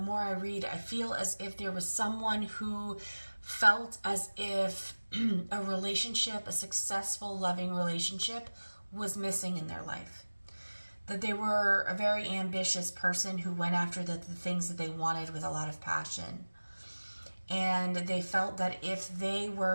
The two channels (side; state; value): both; inverted; correlation -1.00